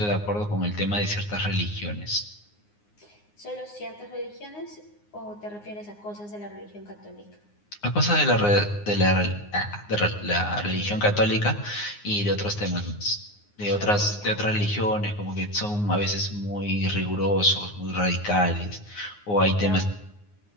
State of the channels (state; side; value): late; right; 9.6 ms